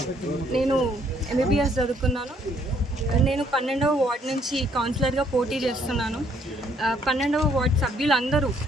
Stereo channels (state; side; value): normal; both; correlation 0.66